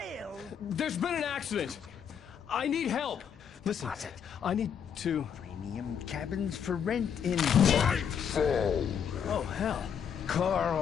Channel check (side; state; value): right; quieter; 7.8 dB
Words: There's been an accident. I need help. Listen, I need to... Premium cabins for rent in... Oh, hell.